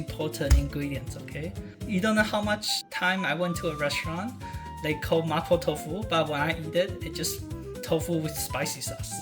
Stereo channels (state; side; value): identical; both; correlation 1.00